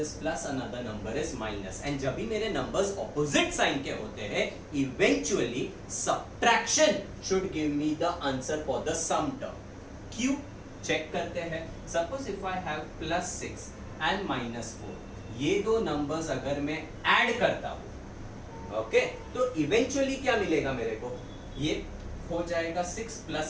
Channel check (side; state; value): both; identical; correlation 1.00